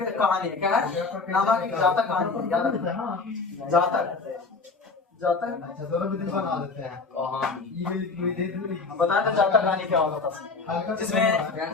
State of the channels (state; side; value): quieter; right; 4.2 dB